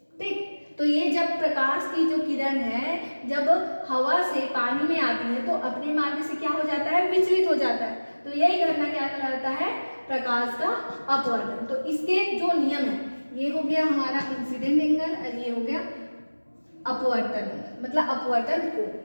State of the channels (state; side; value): inverted; both; correlation -1.00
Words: ठीक, तो ये जब प्रकाश की जो किरण है जब हवा से पानी में आती है तो अपने मार्ग से क्या हो जाता है, विचलित हो जाता है। तो यही घटना क्या कहलाता है, प्रकाश का अपवर्तन। तो इसके जो नियम है, ये हो गया हमारा इंसिडेंट एंगल और ये हो गया अपवर्तन, मतलब अपवर्तन कोण।